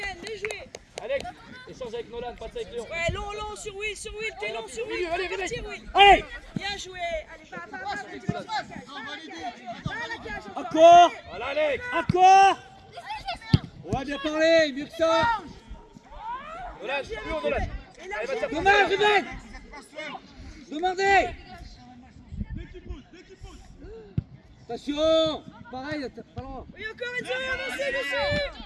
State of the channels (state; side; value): identical; both; correlation 1.00